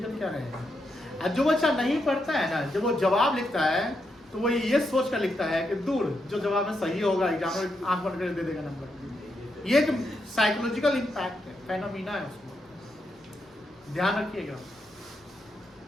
क्या रहेगा? और जो बच्चा नहीं पढ़ता है ना, जब वो जवाब लिखता है तो वो ये सोच कर लिखता है कि दूर जो जवाब में सही होगा एग्जाम में आंख बंद कर दे देगा नंबर। ये एक साइकोलॉजिकल इम्पैक्ट है, फेनोमेना है उसको। ध्यान रखिएगा,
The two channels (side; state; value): both; normal; correlation 0.83